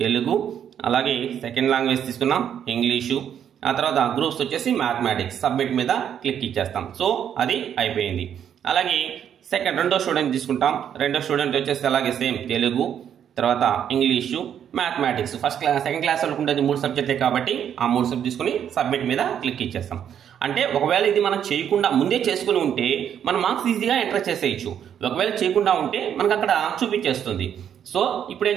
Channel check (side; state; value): left; quieter; 9.1 dB